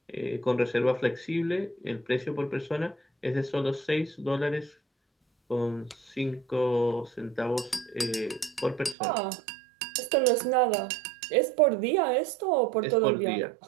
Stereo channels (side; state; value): left; drops out; at 9.0 s